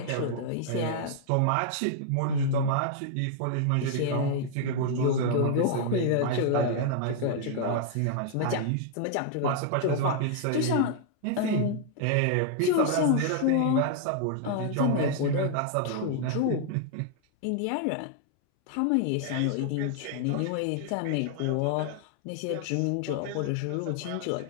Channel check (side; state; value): both; different; correlation -0.01